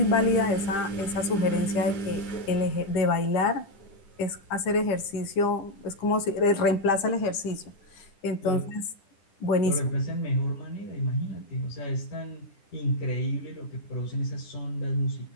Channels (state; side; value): late; right; 10 ms